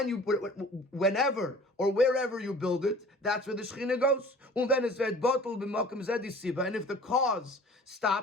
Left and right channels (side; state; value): both; normal; correlation 0.46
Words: or wherever you build it, that's where the Shechina goes. And if the cause